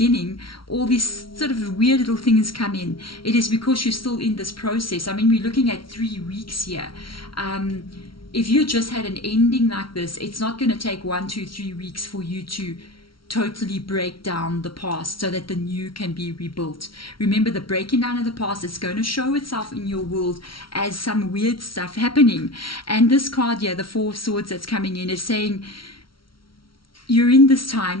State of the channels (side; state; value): right; late; 0.74 ms